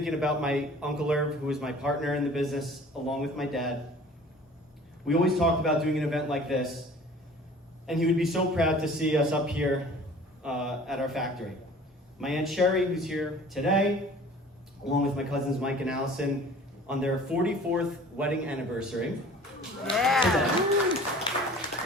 about my Uncle Irv, who is my partner in the business, along with my dad. We always talked about doing an event like this, and he would be so proud to see us up here at our factory. My Aunt Sherry, who's here today, along with my cousins Mike and Allison, on their 44th wedding anniversary. Yeah.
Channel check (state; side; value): normal; both; correlation 0.47